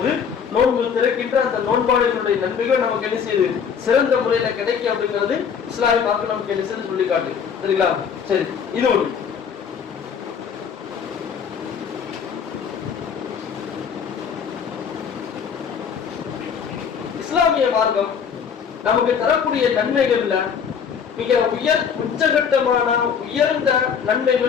நோன்பு திறக்கின்ற அந்த நோன்பாளிகளுடைய நன்மைகள் நமக்கு என்ன செய்யுது, சிறந்த முறையில கிடைக்கும் அப்படிங்கிறது இஸ்லாமிய மார்க்கம் நமக்கு என்ன செய்து சொல்லி காட்டு. சரிங்களா? சரி, இது ஒண்ணு. இஸ்லாமிய மார்க்கம் நமக்கு தரக்கூடிய நன்மைகள்ல மிக உச்சகட்டமான உயர்ந்த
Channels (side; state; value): right; quieter; 7.0 dB